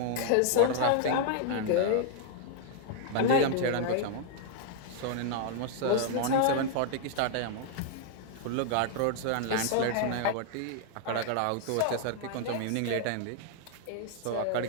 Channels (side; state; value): both; different; correlation 0.00